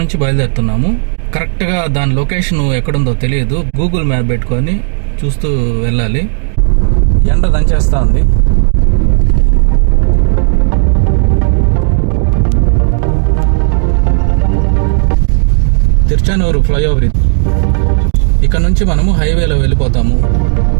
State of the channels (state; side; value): silent; left; digital silence